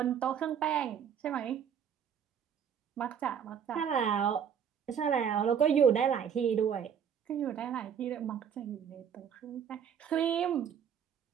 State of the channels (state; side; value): quieter; left; 8.1 dB